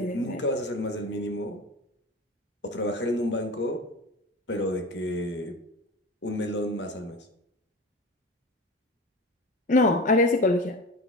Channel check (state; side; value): normal; both; correlation 0.31